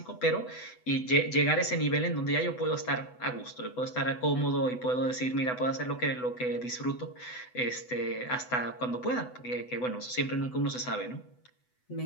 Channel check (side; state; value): right; late; 8.0 ms